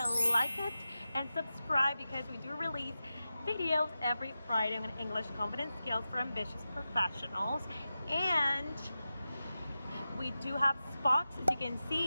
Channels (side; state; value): both; inverted; correlation -0.93